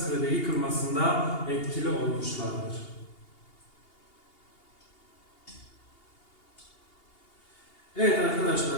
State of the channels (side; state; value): right; late; 2.8 ms